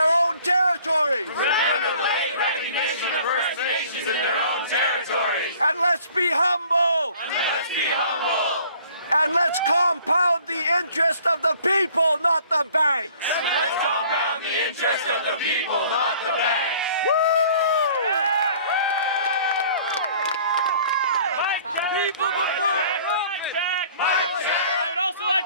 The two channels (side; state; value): both; inverted; correlation -0.53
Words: own territories. Remember the late recognition of First Nations in their own territories. And let's be humble. Let's be humble. And let's compound the interest of the people, not the banks. Let's compound the interest of the people, not the banks. People before I would also